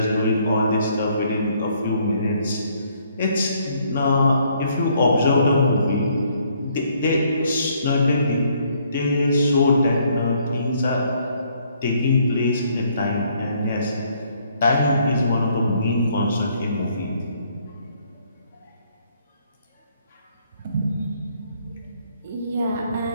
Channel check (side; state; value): both; inverted; correlation -0.67